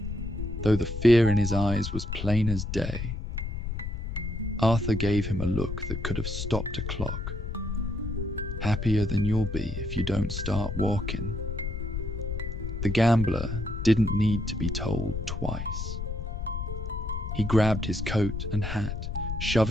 though the fear in his eyes was plain as day. Arthur gave him a look that could have stopped a clock. "Happier than you'll be if you don't start walking." The gambler didn't need to be told twice. He grabbed his coat and hat,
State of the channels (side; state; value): left; noise; rumble, 4 dB below the sound